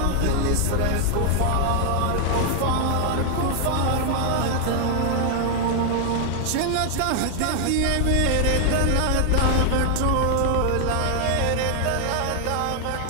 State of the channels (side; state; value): both; different; correlation 0.00